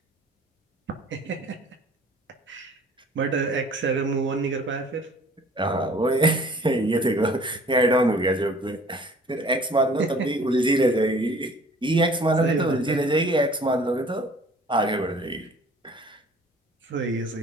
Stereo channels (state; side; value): normal; both; correlation 0.51